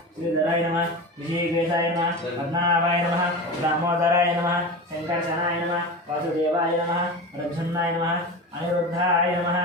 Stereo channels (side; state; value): both; normal; correlation 0.27